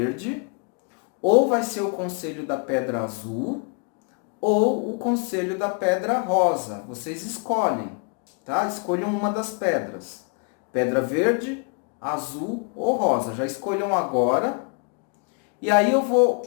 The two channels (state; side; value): quieter; right; 38.3 dB